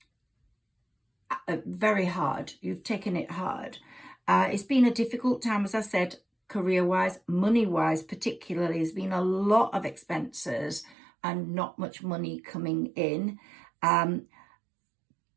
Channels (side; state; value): left; drops out; at 11.0 s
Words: very hard. You've taken it hard. It's been a difficult time, as I said, career-wise, money-wise particularly. There's been a lot of expenses and not much money coming in.